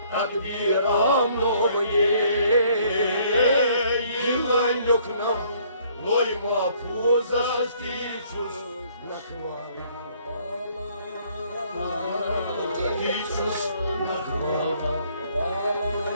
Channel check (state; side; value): inverted; both; correlation -0.62